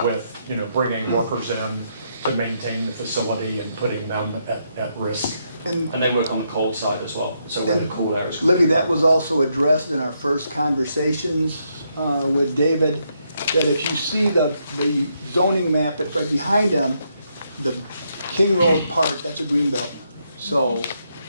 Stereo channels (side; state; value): both; inverted; correlation -0.78